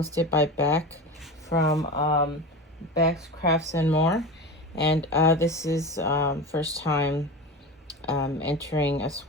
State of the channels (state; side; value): normal; both; correlation 0.27